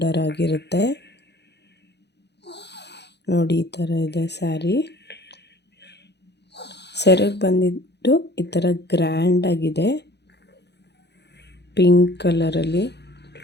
ಆಗಿರುತ್ತೆ. ನೋಡಿ, ಈ ಥರ ಇದೆ ಸ್ಯಾರಿ. ಸೆರಗ್ ಬಂದಿದ್ದು ಈ ಥರ ಗ್ರ್ಯಾಂಡ್ ಆಗಿದೆ, ಪಿಂಕ್ ಕಲರಲ್ಲಿ.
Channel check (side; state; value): right; late; 0.49 ms